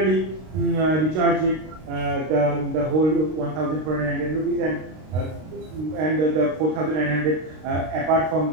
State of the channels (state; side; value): late; left; 32 ms